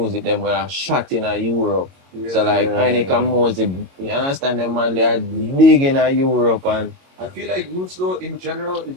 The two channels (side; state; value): left; late; 22 ms